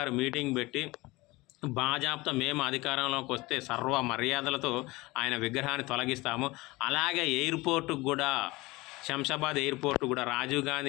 మీటింగ్ పెట్టి బాజాప్తా మేము అధికారంలోకి వస్తే సర్వ మర్యాదలతో ఆయన విగ్రహాన్ని తొలగిస్తాము, అలాగే ఎయిర్పోర్టుకు కూడా, శంషాబాద్ ఎయిర్పోర్ట్ కూడా రాజీవ్ గాంధీ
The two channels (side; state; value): right; quieter; 21.8 dB